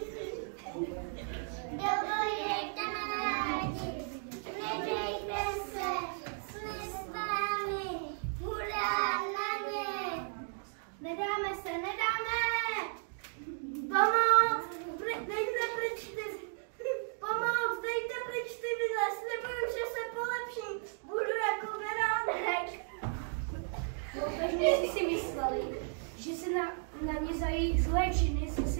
Dovoje, kamarádi, nedejte se, jsme s vámi, hurá na ně. Nedáme se, nedáme! Pomoc! Dejte pryč ty! Pomoc! Dejte pryč ty vidle! Slibuju, že se polepším! Budu jako beránek! Loupežníci si mysleli, že se na ně za jejich zlé činy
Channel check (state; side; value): silent; left; 55 dB below the other